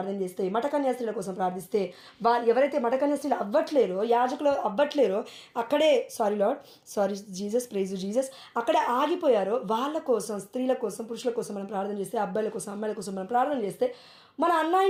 చేస్తే, మఠకన్యాస్త్రీల కోసం ప్రార్థిస్తే, వాళ్ళు ఎవరైతే మఠకన్యాస్త్రీలు అవ్వట్లేరో, యాజకులు అవ్వట్లేరో, అక్కడే సారీ జీసస్, ప్రైజ్ జీసస్, అక్కడే ఆగిపోయారో వాళ్ళ కోసం, స్త్రీల కోసం, పురుషుల కోసం మనం ప్రార్థన చేస్తే, అబ్బాయిల కోసం, అమ్మాయిల కోసం మనం ప్రార్థన చేస్తే, మన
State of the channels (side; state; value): both; identical; correlation 1.00